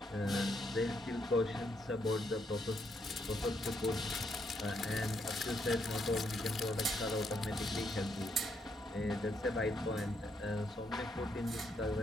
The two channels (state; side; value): normal; both; correlation 0.76